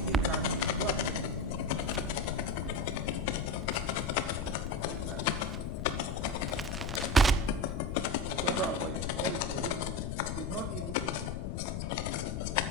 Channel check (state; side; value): noise; left; rumble, 4 dB below the sound